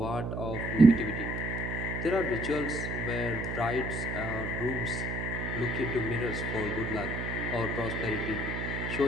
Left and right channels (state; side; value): noise; right; hum, 3 dB below the sound